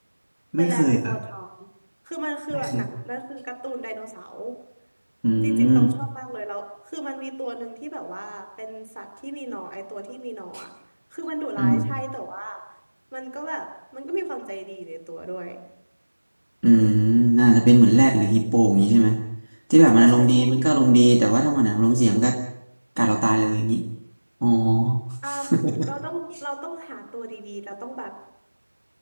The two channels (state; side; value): inverted; both; correlation -1.00